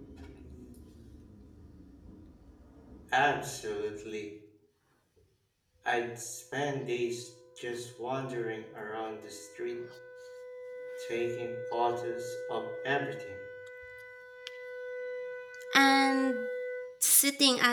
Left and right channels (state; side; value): identical; both; correlation 1.00